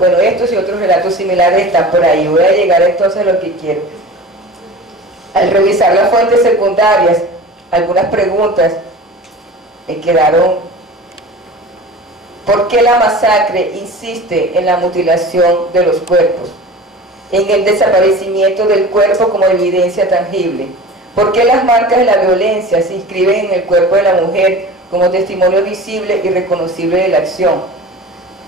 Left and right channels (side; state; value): both; normal; correlation 0.37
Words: estos y otros relatos similares están por ahí. Voy a llegar entonces a lo que quiero. Al revisar las fuentes secundarias, algunas preguntas me quedaron. ¿Por qué la masacre insiste en la mutilación de los cuerpos? En el desaparecimiento del cuerpo como evidencia tangible. ¿Por qué las marcas de la violencia se inscriben en el cuerpo de la mujer como testimonio visible y reconocible de la acción?